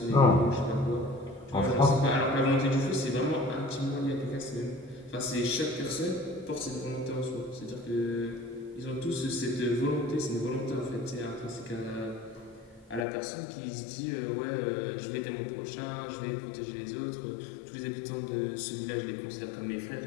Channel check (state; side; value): drops out; right; at 13.1 s